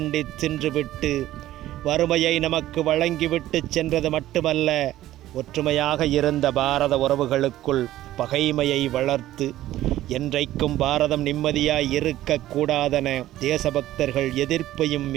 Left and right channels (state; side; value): quieter; left; 14.3 dB